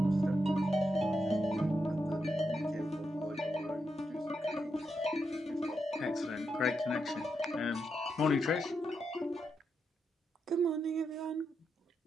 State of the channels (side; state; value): both; normal; correlation 0.84